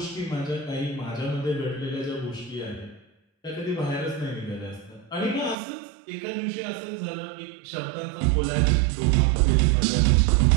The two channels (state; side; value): drops out; left; at 5.6 s